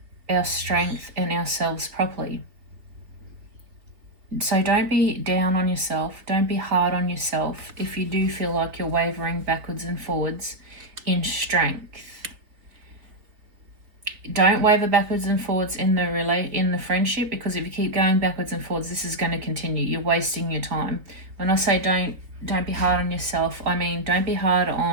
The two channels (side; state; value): left; late; 4.0 ms